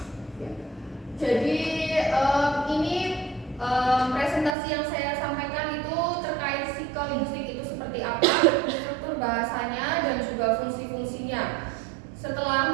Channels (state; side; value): drops out; left; at 4.5 s